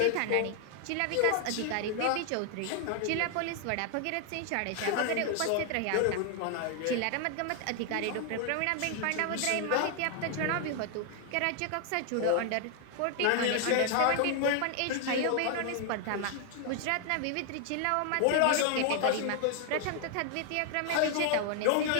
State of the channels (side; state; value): both; different; correlation 0.00